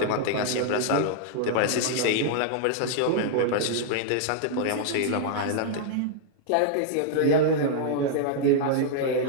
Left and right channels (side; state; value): both; different; correlation -0.01